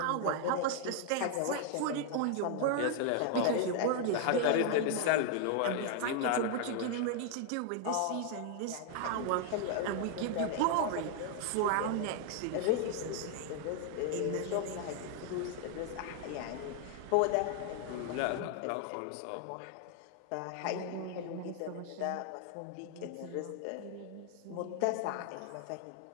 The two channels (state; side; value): different; both; correlation 0.00